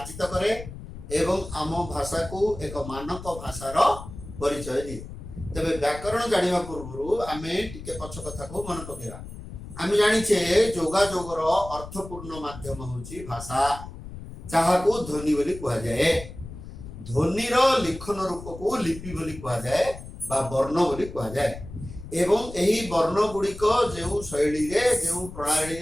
करे एवं आम भाषा को एक मानक भाषार परिचय दिए। तबे व्याकरण जानिबा पूर्व आमे टिके पछ कथा को मन पकेबा। आमे जानिछे जोगाजोगर अर्थपूर्ण माध्यम होची भाषा, जाहाको ध्वनि बोली कहा जाए। ध्वनिर लिखन रूप को लिपि बोली कहा जाए बा वर्ण बोली कहा जाए। एवं यही वर्ण गुड़िक जो शैली रे जो प्रणाली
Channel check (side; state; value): left; noise; rumble, 13 dB below the sound